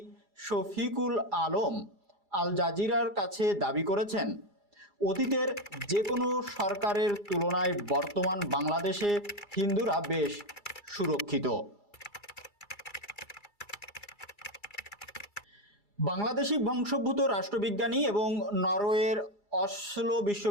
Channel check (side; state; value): right; late; 2.3 ms